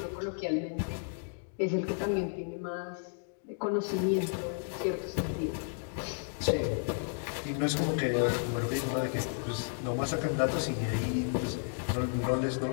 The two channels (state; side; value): silent; right; 56 dB below the other